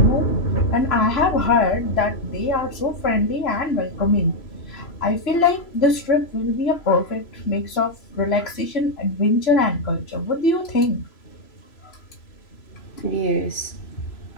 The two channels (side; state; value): right; late; 3.0 ms